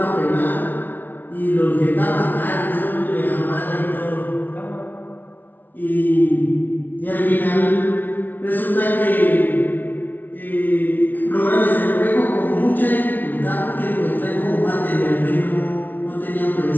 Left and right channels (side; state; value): right; late; 0.085 ms